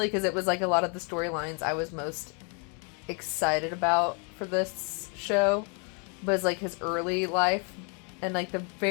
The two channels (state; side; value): quieter; right; 37.0 dB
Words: because it was like a lot of the storylines I was most excited about for this show was like his early life, and like the